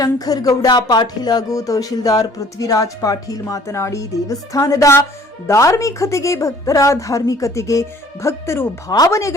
ಗೌಡ ಪಾಟೀಲ್ ಹಾಗೂ ತಹಶೀಲ್ದಾರ್ ಪೃಥ್ವಿರಾಜ್ ಪಾಟೀಲ್ ಮಾತನಾಡಿ, ದೇವಸ್ಥಾನದ ಧಾರ್ಮಿಕತೆಗೆ, ಭಕ್ತರ ಧಾರ್ಮಿಕತೆಗೆ, ಭಕ್ತರು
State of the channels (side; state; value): both; normal; correlation 0.54